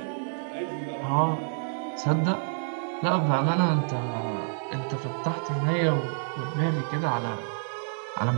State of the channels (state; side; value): silent; left; digital silence